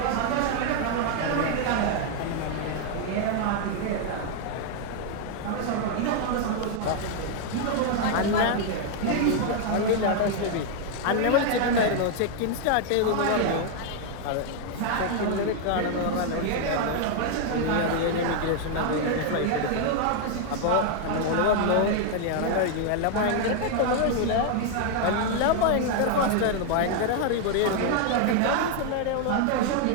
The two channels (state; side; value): different; both; correlation 0.00